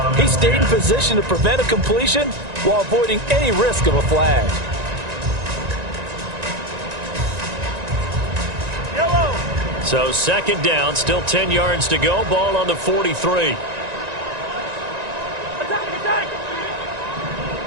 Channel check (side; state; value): left; late; 1.9 ms